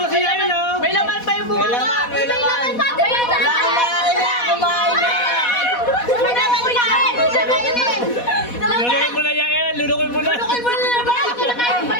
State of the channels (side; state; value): right; late; 4.1 ms